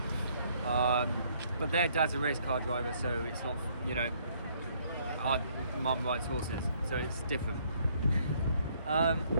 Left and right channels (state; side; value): inverted; both; correlation -0.65